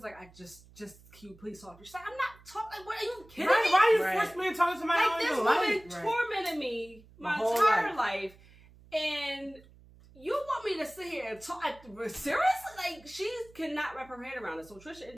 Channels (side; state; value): right; noise; hum, 24 dB below the sound